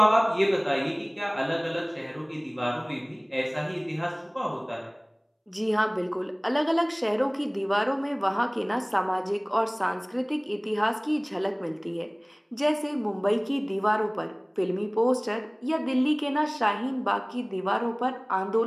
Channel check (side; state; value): both; identical; correlation 1.00